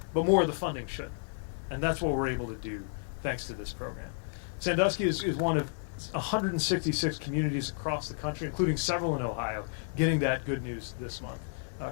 but more of the funding should. And that's what we're able to do thanks to this program. Sandusky is one of 166 communities across the country, including several in Ohio, getting that good news this month,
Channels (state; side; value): silent; right; digital silence